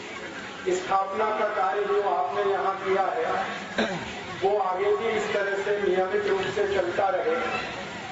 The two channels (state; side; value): identical; both; correlation 1.00